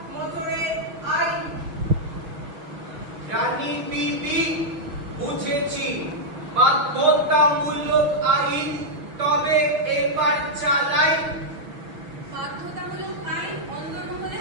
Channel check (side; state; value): left; late; 6.3 ms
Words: মোটরে আইন। রানী বিবি, বুঝেছি বাধ্যতামূলক আইন, তবে এবার চালাই। বাধ্যতামূলক আইন অন্দরমহলে